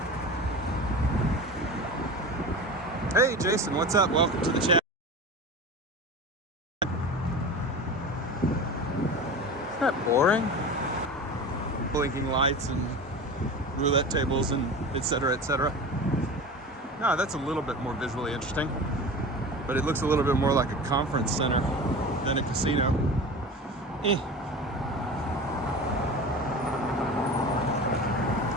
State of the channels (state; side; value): normal; both; correlation 0.32